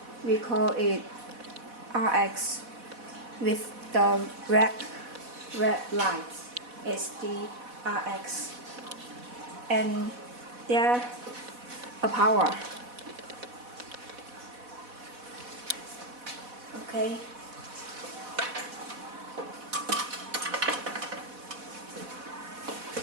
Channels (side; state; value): left; late; 4.1 ms